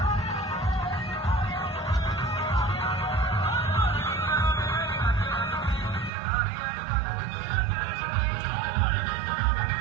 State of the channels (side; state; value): left; drops out; at 6.1 s